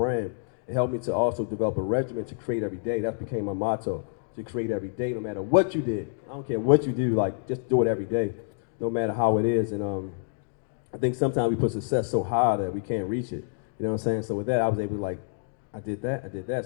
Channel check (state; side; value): silent; right; digital silence